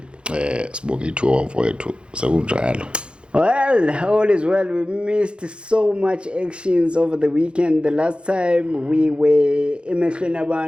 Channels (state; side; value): late; left; 0.055 ms